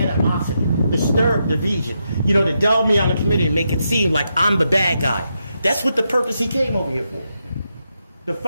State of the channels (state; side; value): inverted; both; correlation -0.83